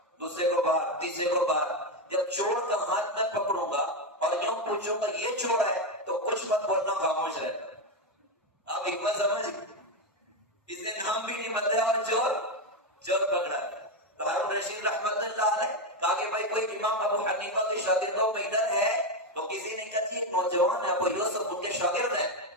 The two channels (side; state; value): both; normal; correlation 0.09